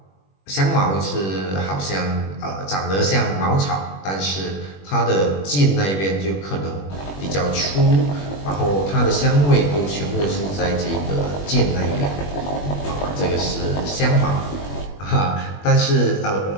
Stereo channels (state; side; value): late; right; 21 ms